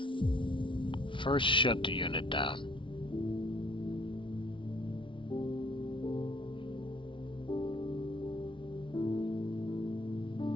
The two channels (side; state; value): right; late; 0.25 ms